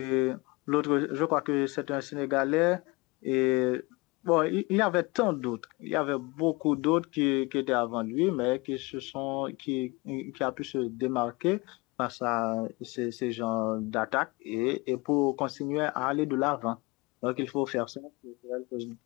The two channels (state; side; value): quieter; right; 25.0 dB